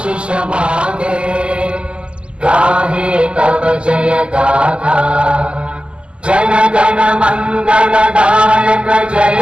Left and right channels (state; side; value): late; left; 0.051 ms